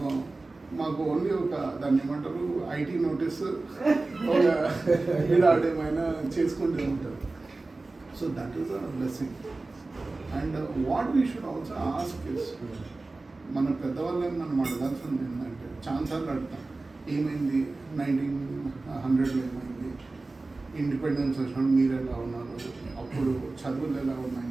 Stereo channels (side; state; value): left; quieter; 3.3 dB